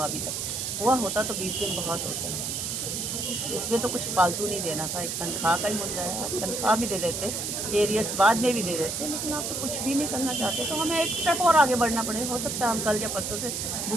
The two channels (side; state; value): right; noise; hiss, 3 dB below the sound